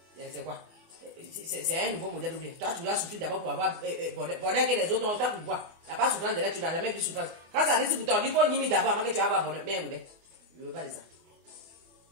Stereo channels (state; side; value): late; left; 24 ms